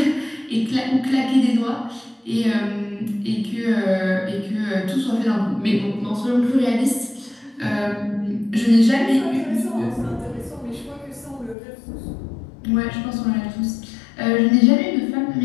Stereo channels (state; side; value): drops out; right; at 11.6 s